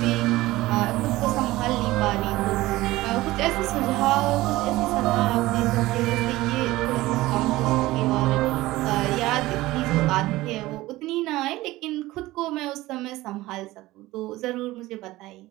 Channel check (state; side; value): quieter; left; 18.0 dB